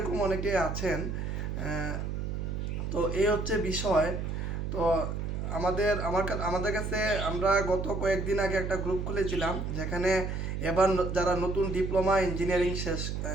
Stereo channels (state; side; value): noise; right; hum, 3 dB below the sound